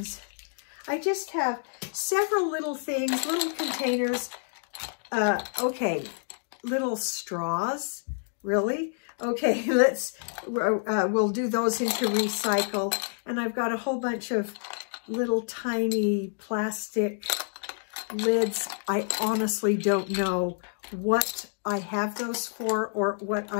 I just have several little things, little containers. Okay, little straws, really? Okay, we'll do those into recycle. And I've got a whole bunch of little tiny plastic lids. I honestly don't know what I have those for or what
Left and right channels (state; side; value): silent; right; digital silence